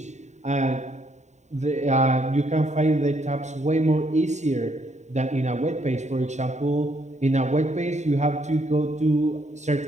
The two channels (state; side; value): late; left; 0.34 ms